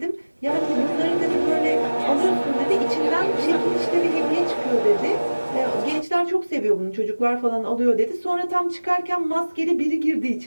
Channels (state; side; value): inverted; both; correlation -1.00